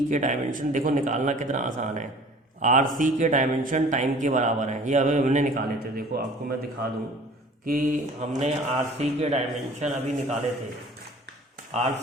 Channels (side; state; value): both; normal; correlation 0.48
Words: के डायमेंशन देखो निकालना कितना आसान है। RC के डायमेंशन टाइम के बराबर हैं, ये अभी हमने निकाले थे। देखो आपको मैं दिखा दूँ कि हमने RC के डायमेंशन अभी निकाले थे।